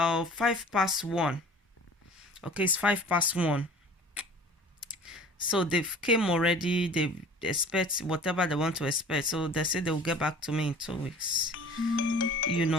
1:05. Okay, it's 1:05. So they've came already. They expect whatever they want to expect. So they say they'll get back to me in 2 weeks. You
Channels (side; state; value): both; normal; correlation 0.46